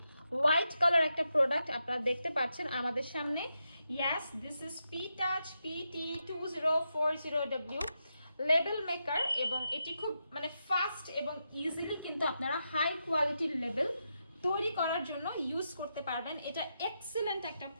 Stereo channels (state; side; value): inverted; both; correlation -0.85